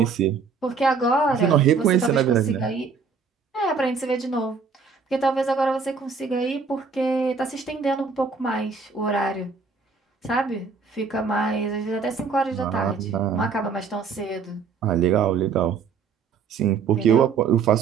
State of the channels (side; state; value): left; quieter; 5.4 dB